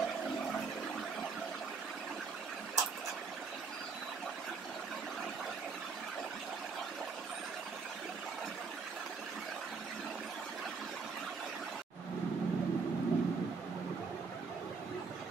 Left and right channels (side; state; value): left; quieter; 4.9 dB